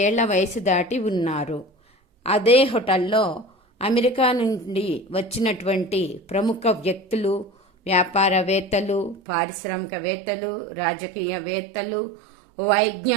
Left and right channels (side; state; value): left; drops out; at 9.2 s